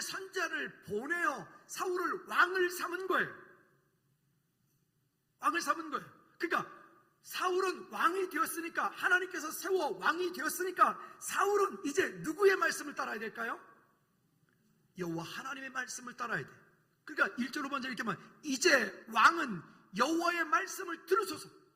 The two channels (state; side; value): identical; both; correlation 1.00